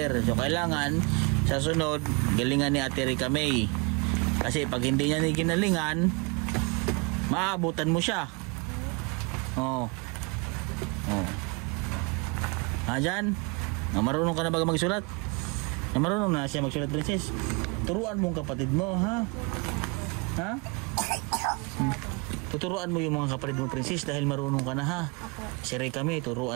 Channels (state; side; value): quieter; left; 30.6 dB